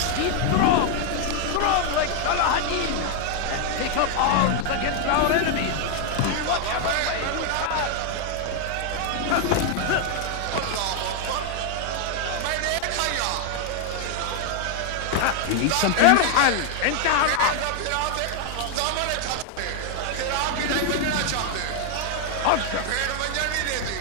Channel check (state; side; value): different; both; correlation 0.00